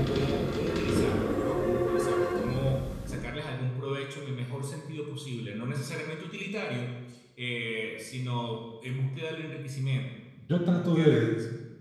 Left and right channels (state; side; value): identical; both; correlation 1.00